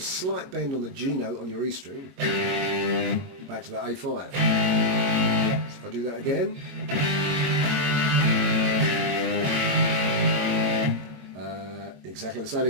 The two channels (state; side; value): late; left; 22 ms